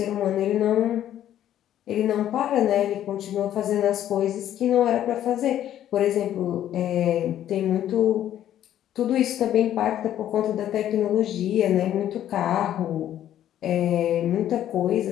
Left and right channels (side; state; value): right; quieter; 11.5 dB